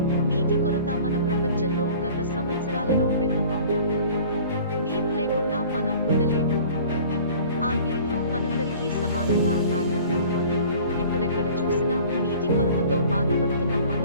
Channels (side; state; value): both; inverted; correlation -0.47